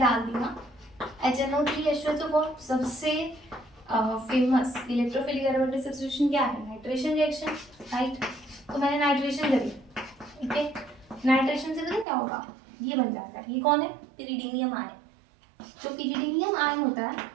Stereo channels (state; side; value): drops out; left; at 12.1 s